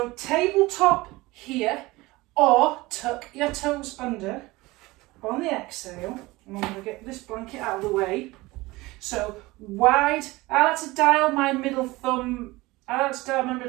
tabletop here, or tuck your toes under on the exhale. I'm going to get this blanket out of the way. So wide, I like to dial my middle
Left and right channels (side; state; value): left; quieter; 20.9 dB